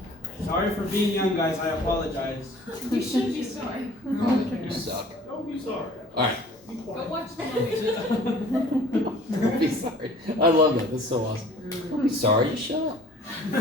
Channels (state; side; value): normal; both; correlation 0.50